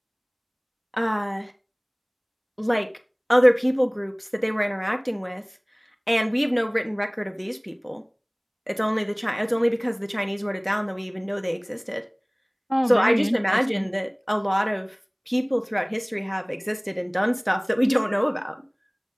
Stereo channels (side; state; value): both; identical; correlation 1.00